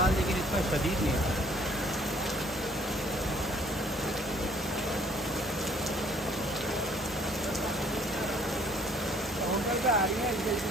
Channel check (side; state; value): both; normal; correlation 0.59